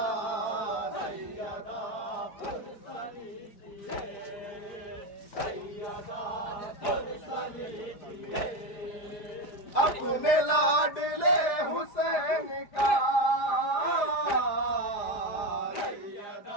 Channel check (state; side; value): late; right; 5.0 ms